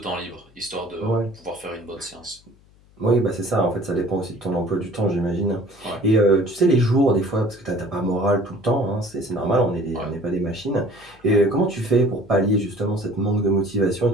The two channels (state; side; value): noise; left; hum, 29 dB below the sound